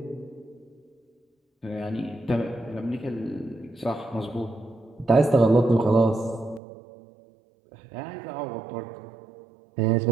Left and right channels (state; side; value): drops out; left; at 6.6 s